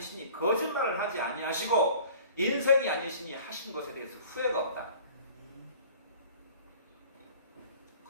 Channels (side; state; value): both; inverted; correlation -0.48